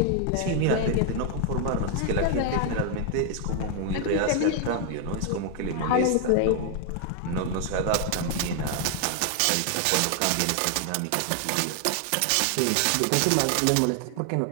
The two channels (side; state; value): both; different; correlation 0.00